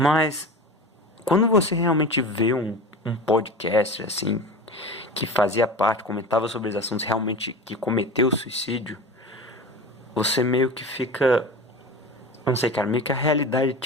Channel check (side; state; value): both; normal; correlation 0.32